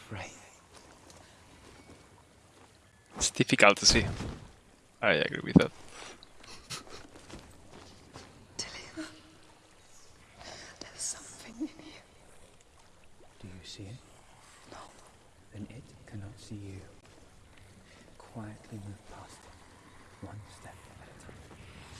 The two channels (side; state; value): both; identical; correlation 1.00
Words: It's difficult to see. I agree with that. Dillian, there's something in here. Do you see it? No. Then it cannot see you. Quietly move past it, one step at a time.